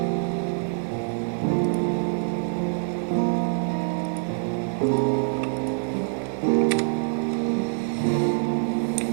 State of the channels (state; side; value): silent; left; 62 dB below the other